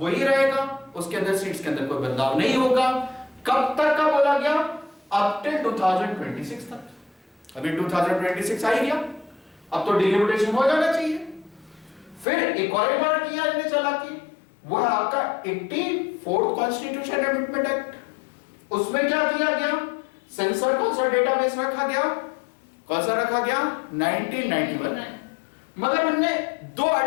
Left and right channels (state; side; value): drops out; right; at 12.2 s